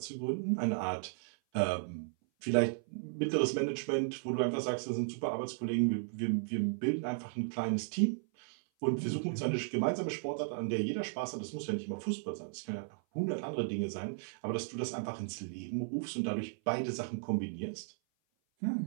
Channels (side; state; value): left; silent; 54 dB below the other